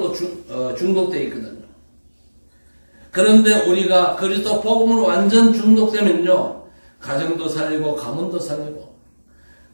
중독되어 있거든요. 그런데 우리가 그리스도 복음으로 완전 중독되면요, 가정도 살리고 가문도 살리고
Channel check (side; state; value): both; inverted; correlation -1.00